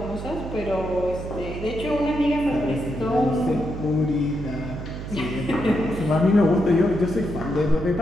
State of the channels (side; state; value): right; noise; hum, 8 dB below the sound